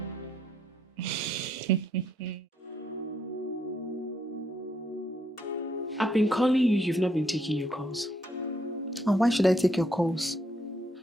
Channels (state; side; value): normal; both; correlation 0.73